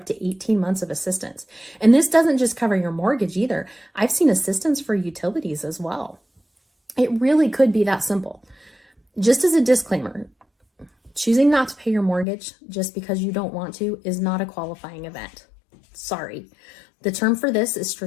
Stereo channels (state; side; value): drops out; right; at 12.2 s